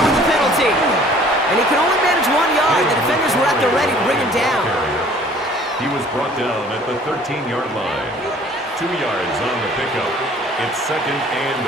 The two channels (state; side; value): normal; both; correlation 0.53